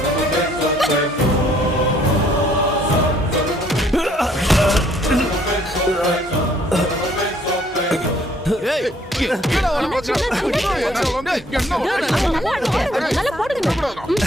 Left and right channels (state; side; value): normal; both; correlation 0.63